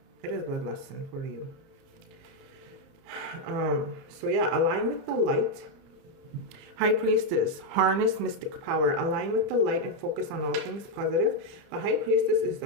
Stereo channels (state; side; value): late; left; 30 ms